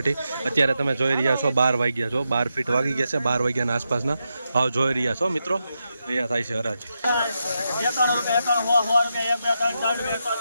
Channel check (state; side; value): inverted; both; correlation -0.86